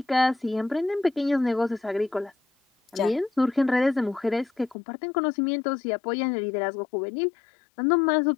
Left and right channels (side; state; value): right; drops out; at 4.8 s